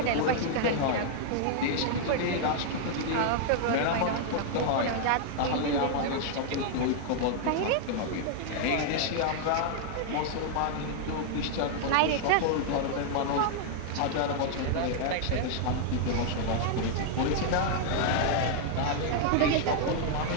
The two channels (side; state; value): both; different; correlation -0.01